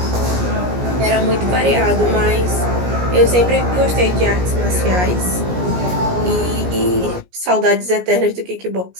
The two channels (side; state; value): left; late; 17 ms